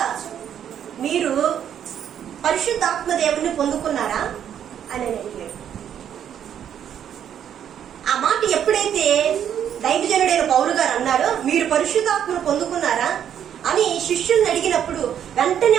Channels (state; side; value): quieter; left; 9.4 dB